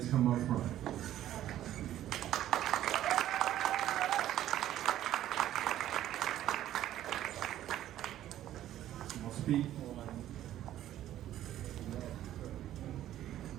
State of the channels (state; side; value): quieter; left; 12.6 dB